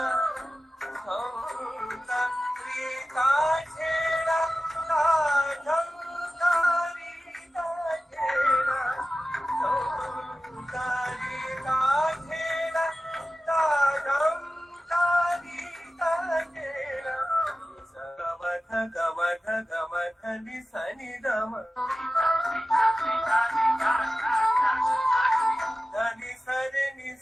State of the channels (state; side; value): normal; both; correlation 0.95